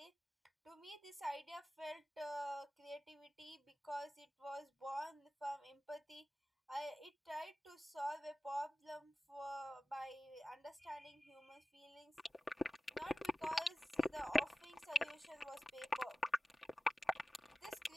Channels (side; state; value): both; normal; correlation 0.95